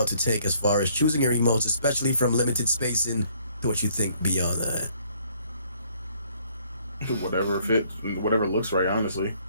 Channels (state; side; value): inverted; both; correlation -0.64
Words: to take as far as choosing your emotes, especially from limited spacing to what you think beyond that? Whatever looks right, honestly.